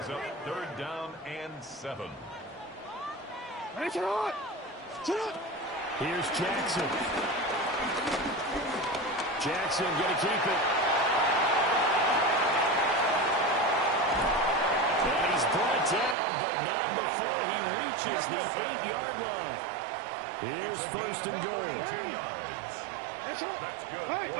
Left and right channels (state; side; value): drops out; left; at 16.2 s